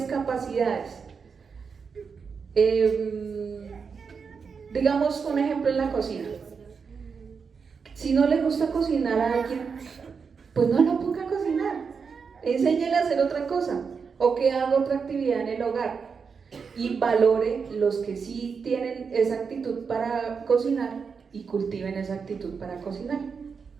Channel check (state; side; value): quieter; left; 5.7 dB